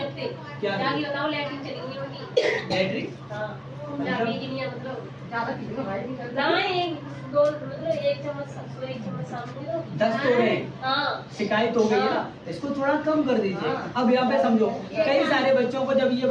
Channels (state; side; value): identical; both; correlation 1.00